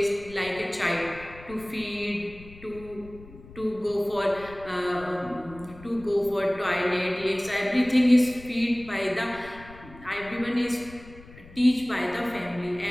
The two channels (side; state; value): left; noise; rumble, 19 dB below the sound